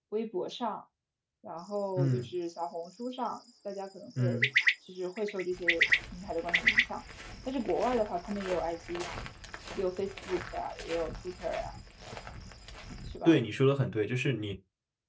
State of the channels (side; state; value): both; identical; correlation 1.00